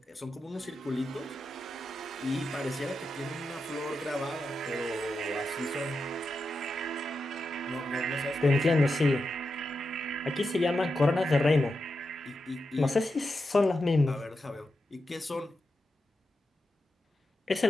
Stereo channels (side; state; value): both; normal; correlation 0.88